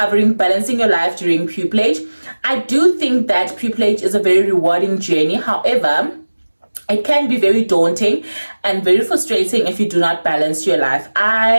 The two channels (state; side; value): inverted; both; correlation -1.00